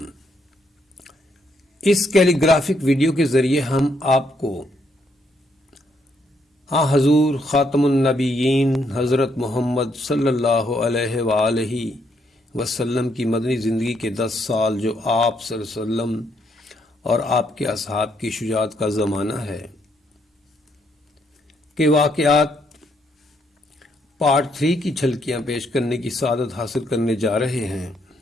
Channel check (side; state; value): both; normal; correlation 0.74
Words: اس کیلی گرافک ویڈیو کے ذریعے ہم آپ کو حضور خاتم النبیین حضرت محمد صلی اللہ علیہ وآلہ وسلم کی مدنی زندگی کے 10 سال جو آپ صلی اللہ علیہ وسلم اور آپ کے اصحاب کی شجاعت کا زمانہ ہے کہ واقعات پارٹ 3 کی جھلکیاں پیش کرنے کی سعادت حاصل کرنے جا رہے ہیں۔